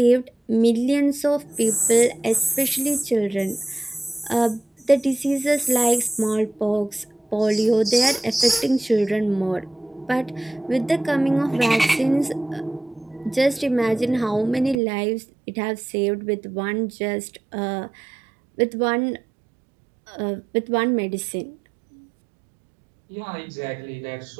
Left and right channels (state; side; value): drops out; left; at 14.8 s